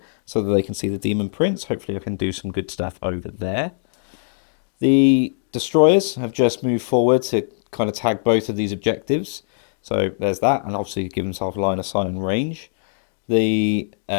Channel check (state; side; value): silent; right; digital silence